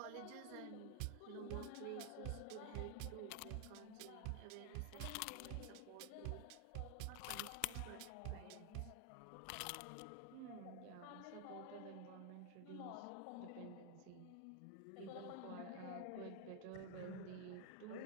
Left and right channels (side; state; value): both; different; correlation 0.00